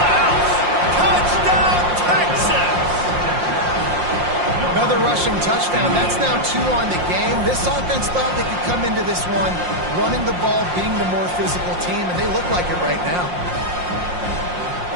house. Touchdown, Texas! Another rushing touchdown. That's now 2 on the game. This offense thought they could come into this one running the ball, being the more physical team, and they look like it right now.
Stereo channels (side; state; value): left; late; 5.6 ms